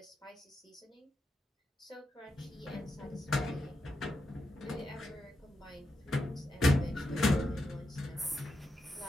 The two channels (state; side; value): normal; both; correlation 0.86